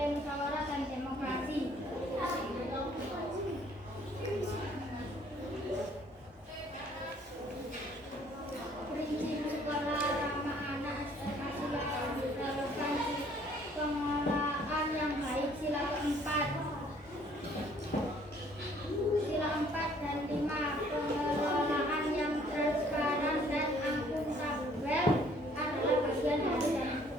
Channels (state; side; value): normal; both; correlation 0.60